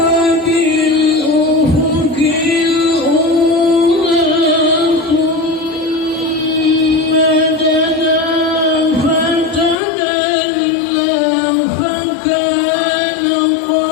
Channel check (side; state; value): right; drops out; at 9.8 s